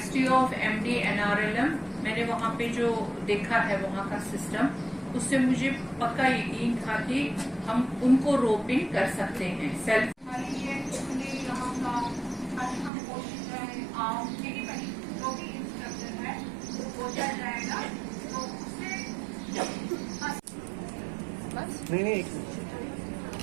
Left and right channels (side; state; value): left; drops out; at 12.9 s